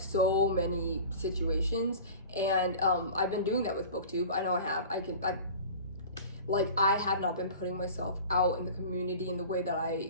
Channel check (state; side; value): inverted; both; correlation -0.39